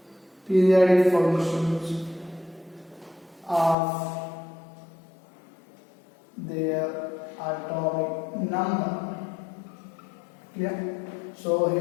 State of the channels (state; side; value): drops out; right; at 3.8 s